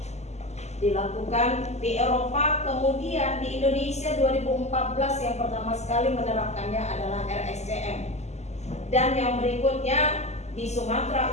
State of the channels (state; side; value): late; right; 0.33 ms